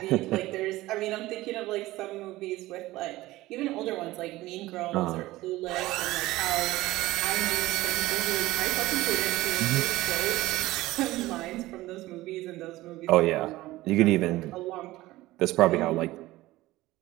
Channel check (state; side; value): quieter; left; 17.8 dB